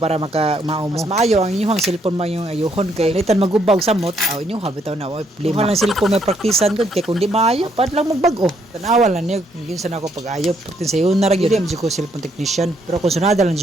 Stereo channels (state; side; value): normal; both; correlation 0.72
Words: mao mo. Mas maayo ang inyong cellphone man yung ayuhon kay litan magubag samot. Aw inyo habitaw na oy problema. Lang cellphone may praktisan gud kay kun di maayo pad lang magbag-o. Tanawa lang niya yun sa nako pag-ayo. Pagtin sa yun na ra gyud ko cellphone technician. Pero kung sunada lang